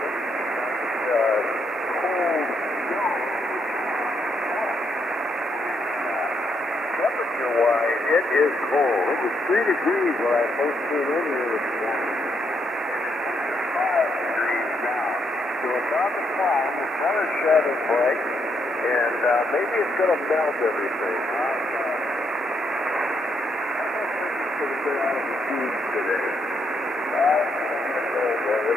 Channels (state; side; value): normal; both; correlation 0.76